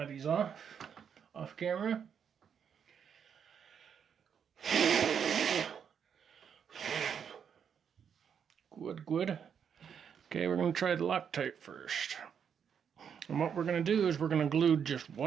these off camera. Good. Okay, we're going to try the Loctite first. And what we're going to do is we're going to glue just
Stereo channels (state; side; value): quieter; left; 7.6 dB